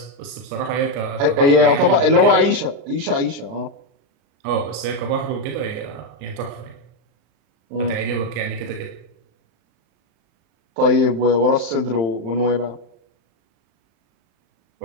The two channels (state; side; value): late; left; 35 ms